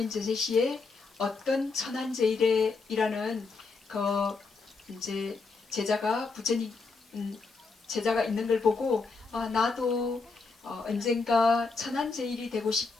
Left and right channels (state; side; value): quieter; right; 4.2 dB